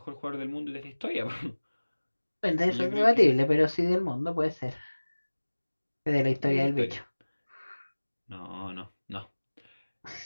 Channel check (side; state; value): both; inverted; correlation -1.00